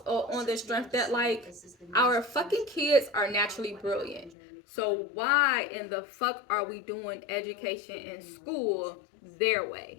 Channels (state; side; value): drops out; right; at 4.3 s